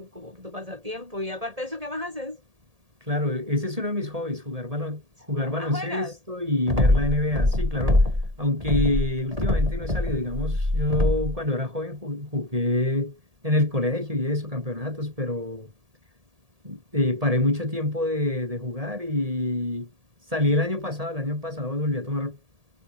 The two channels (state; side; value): late; left; 1.8 ms